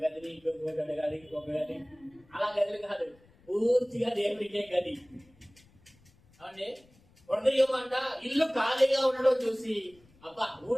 గదిని ఇంకొక గది ఇంకొక గది, అలా గదులు కాదు, పూర్తిగా దేవుడికే గది. అవునండి. హృదయం అంట ఇల్లు ఖాళీగా ఉండడం చూసి, అబ్బా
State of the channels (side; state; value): left; noise; rumble, 29 dB below the sound